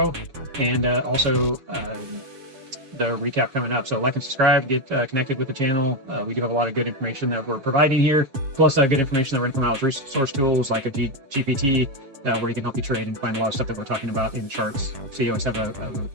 and also the recap coming up. So like and subscribe, get connected with the channel. We do have a lot of good information that we're providing here, plus good information that we're going to come out with resource tools like a GPT, where you can help you trade and find a lot of stuff that we're talking about in charts. So you always have a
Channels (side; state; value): left; late; 7.2 ms